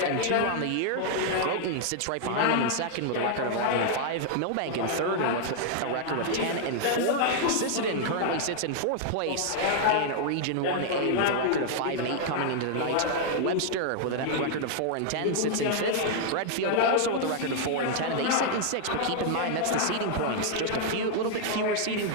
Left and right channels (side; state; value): both; different; correlation 0.00